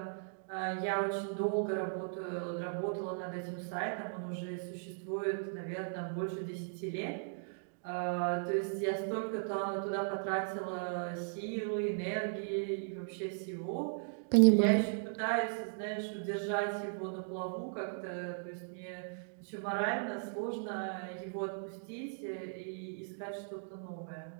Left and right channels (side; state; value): left; silent; digital silence